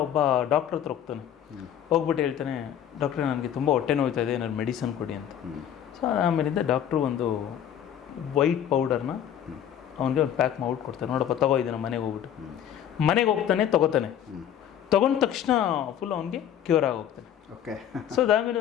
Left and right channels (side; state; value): right; quieter; 9.9 dB